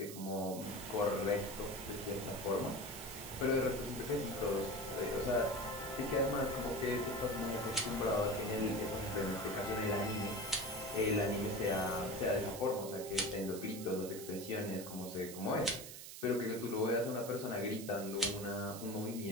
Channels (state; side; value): noise; right; hiss, 11 dB below the sound